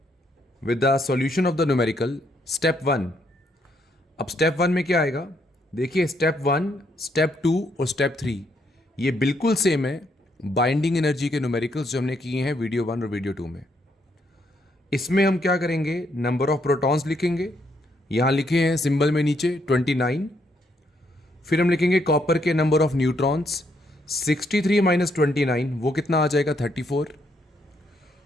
with the solution of the numerical step 1। अब स्टेप 1 में क्या आएगा? देखिए स्टेप 1, स्टेप 2 और स्टेप 3 ये बिल्कुल सेम है बाइंडिंग एनर्जी के न्यूमेरिकल्स जो हमने किए हैं वीडियो 1 और वीडियो 2 में। इसमें हम क्या करेंगे? नंबर ऑफ प्रोटॉन्स लिखेंगे, यहां लिखे हैं सिंबल में नीचे 29। फिर हम लिखेंगे कॉपर के नंबर ऑफ न्यूट्रॉन्स, 63 माइनस 29 वो कितना आ जाएगा? 34।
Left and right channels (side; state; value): both; normal; correlation 0.74